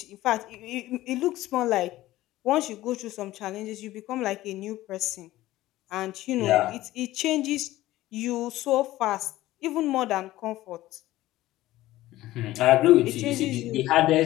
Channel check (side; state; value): right; quieter; 16.1 dB